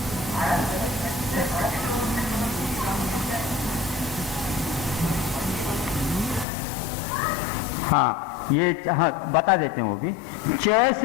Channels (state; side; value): drops out; right; at 6.5 s